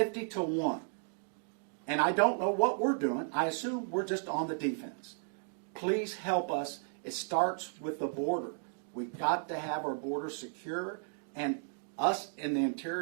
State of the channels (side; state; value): left; silent; digital silence